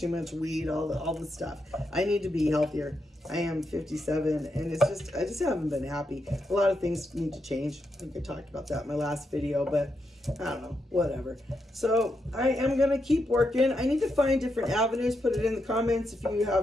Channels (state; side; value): normal; both; correlation 0.83